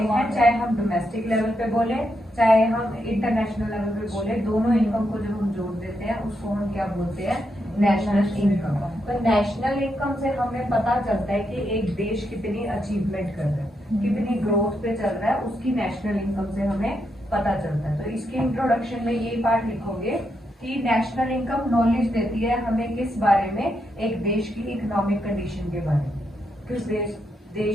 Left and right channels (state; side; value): normal; both; correlation 0.81